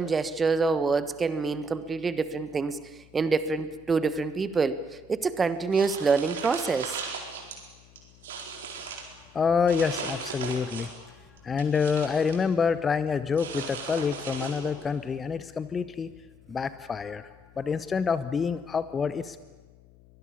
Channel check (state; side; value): noise; left; hum, 26 dB below the sound